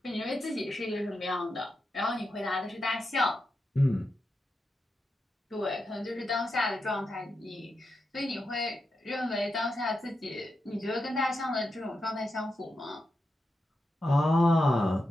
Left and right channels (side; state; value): both; normal; correlation 0.87